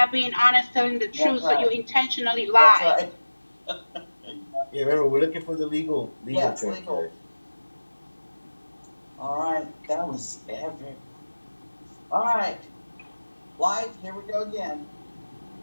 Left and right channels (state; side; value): inverted; both; correlation -1.00